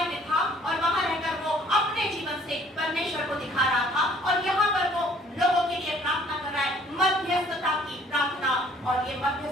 में था, और वहां रहकर वो अपने जीवन से परमेश्वर को दिखा रहा था। और यहाँ पर वो लोगों के लिए प्रार्थना कर रहा है, मध्यस्थता की प्रार्थना। और ये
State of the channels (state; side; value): normal; both; correlation 0.58